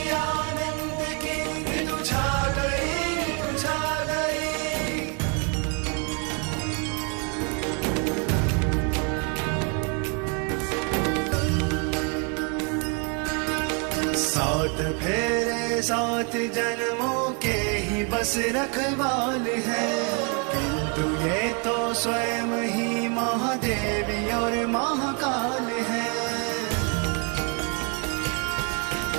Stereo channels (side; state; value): left; quieter; 36.3 dB